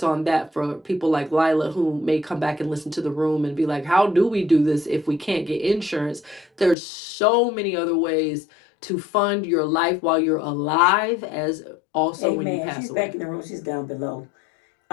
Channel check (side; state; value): right; drops out; at 6.8 s